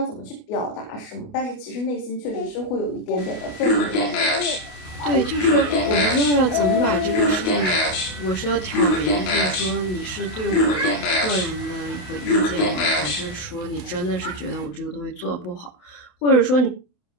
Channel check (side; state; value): right; late; 28 ms